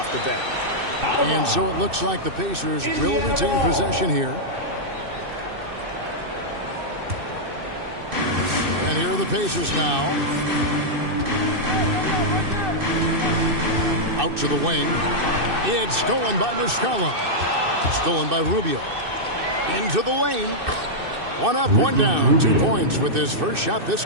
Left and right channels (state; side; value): late; left; 2.6 ms